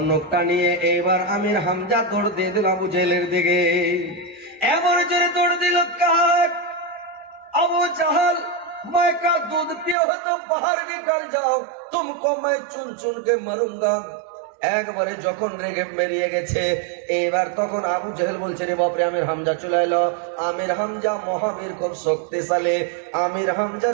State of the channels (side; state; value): left; drops out; at 10.0 s